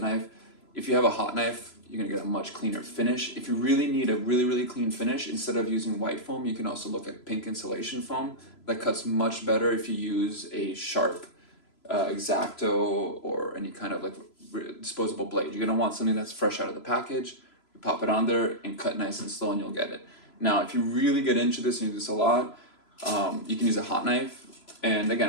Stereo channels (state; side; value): late; right; 3.0 ms